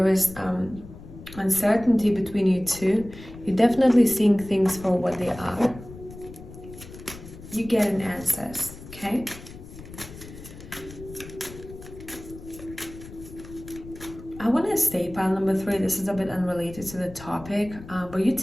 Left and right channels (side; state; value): left; noise; rumble, 16 dB below the sound